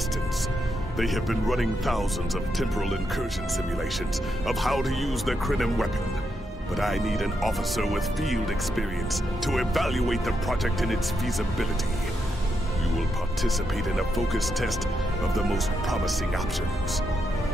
They have been running thousands of temporal incursion simulations of how to use the Klingon weapon. But I need an officer with field experience to evaluate the project in its feasibility. You will participate in a focus test of the most promising options.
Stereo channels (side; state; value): both; normal; correlation 0.82